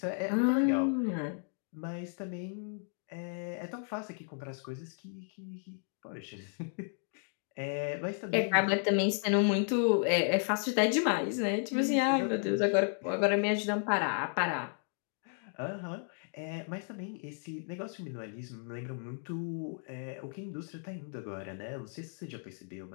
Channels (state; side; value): silent; right; 55 dB below the other